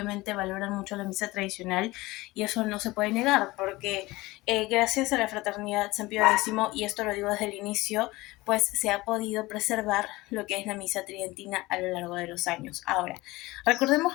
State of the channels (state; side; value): quieter; right; 20.3 dB